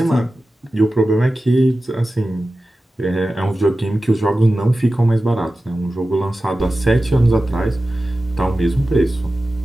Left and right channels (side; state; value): both; normal; correlation 0.95